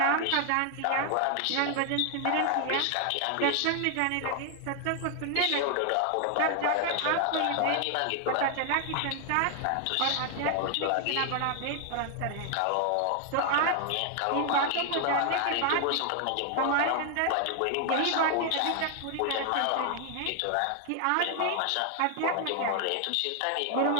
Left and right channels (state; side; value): different; both; correlation 0.00